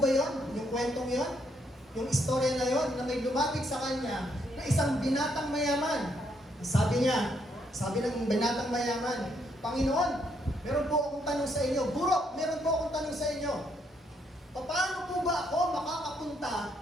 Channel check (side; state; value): both; normal; correlation 0.73